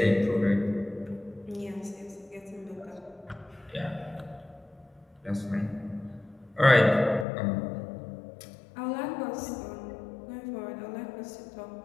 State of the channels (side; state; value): right; drops out; at 7.2 s